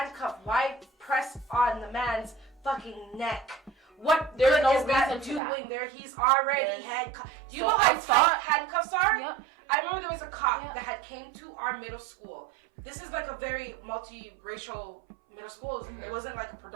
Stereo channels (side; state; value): left; drops out; at 5.4 s